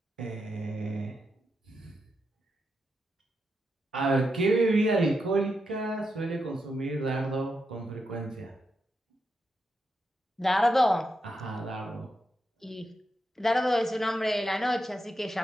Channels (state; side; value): normal; both; correlation 0.85